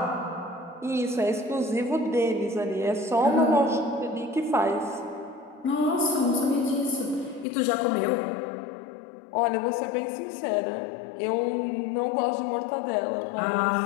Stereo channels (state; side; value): drops out; right; at 7.5 s